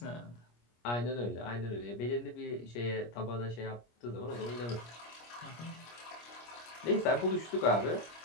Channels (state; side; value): late; right; 25 ms